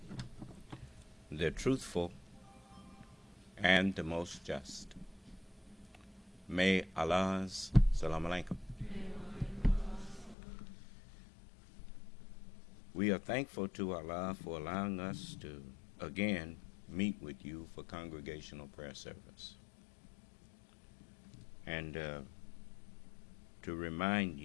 the Truthful, and the Most Just. May Allah's Salam Alaikum. We are thankful to Allah for allowing us to again meet with you for congregational prayer service. And to remind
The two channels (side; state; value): right; drops out; at 10.4 s